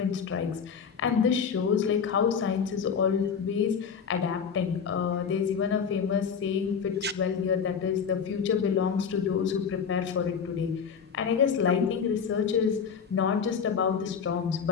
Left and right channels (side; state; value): right; quieter; 6.6 dB